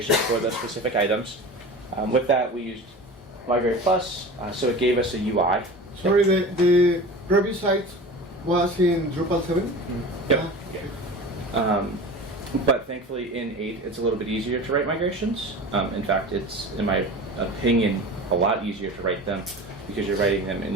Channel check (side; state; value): both; normal; correlation 0.34